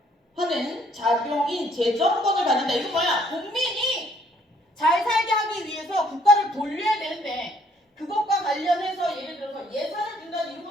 자병인 재정권을 가진다. 이거 국민이 잘 살게 하기 위해서 국가를 돌려야 되는데 그것과 관련해서 예를 들어서 예산을 준다는 이런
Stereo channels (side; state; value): both; normal; correlation 0.64